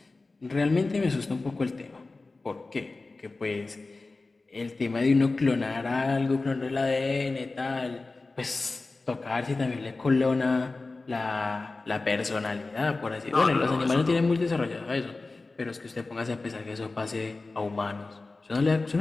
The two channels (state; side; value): quieter; right; 3.5 dB